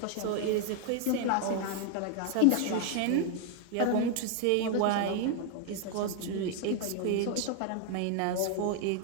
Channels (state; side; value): different; both; correlation 0.00